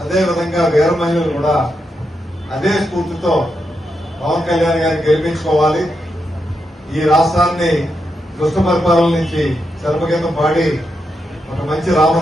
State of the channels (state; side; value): normal; both; correlation 0.84